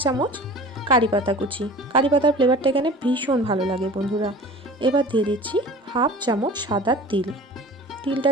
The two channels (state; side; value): normal; both; correlation 0.41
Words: চামচ কারি পাতা কুচি। কারি পাতার ফ্লেভারটা এখানে ভীষণ ভালো লাগে বন্ধুরা। এবার দিয়ে দিচ্ছি 1/2 চামচ সাদা তিল। তিলটা